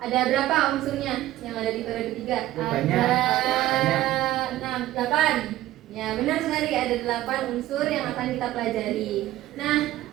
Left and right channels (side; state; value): left; quieter; 14.9 dB